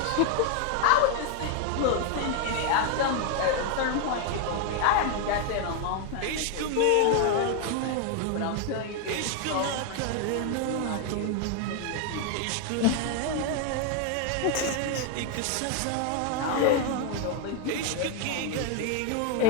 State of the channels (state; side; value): different; both; correlation 0.01